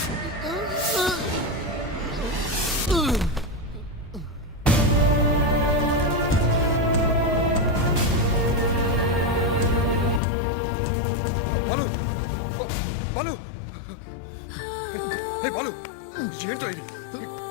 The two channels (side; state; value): right; drops out; at 10.2 s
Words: బాలు బాలు హే బాలు, ఏంటో ఇది?